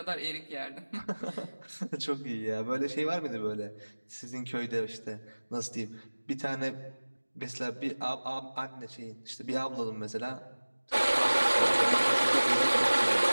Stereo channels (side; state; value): both; inverted; correlation -1.00